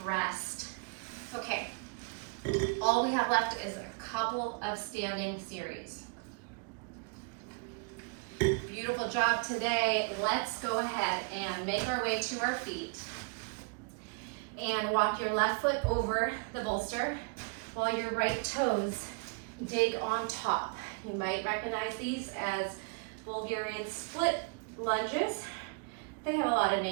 rest. Okay, all we have left is a couple of standing series. Beautiful job today. Let's go ahead and make our way to our feet and walk your left foot over the bolster while your right toes dig on top. You might recognize these as Bulgarian split lunges. They have a lot of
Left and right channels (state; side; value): quieter; left; 34.2 dB